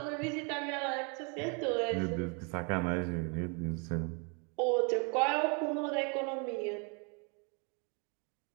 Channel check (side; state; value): left; quieter; 35.2 dB